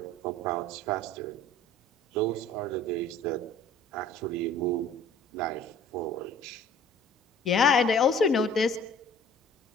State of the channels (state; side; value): normal; both; correlation 0.50